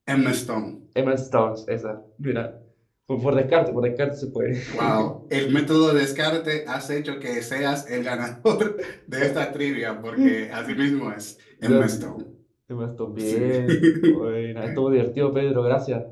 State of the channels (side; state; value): both; identical; correlation 1.00